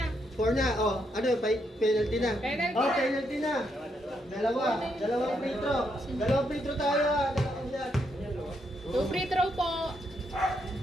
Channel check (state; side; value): normal; both; correlation 0.78